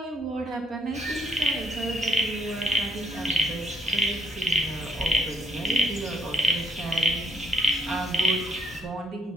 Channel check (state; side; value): normal; both; correlation 0.73